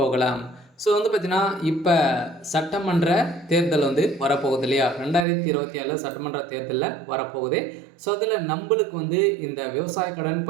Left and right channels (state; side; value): drops out; left; at 5.2 s